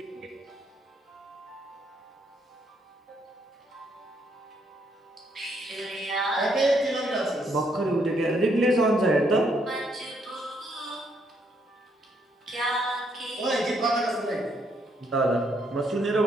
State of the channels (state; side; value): normal; both; correlation 0.72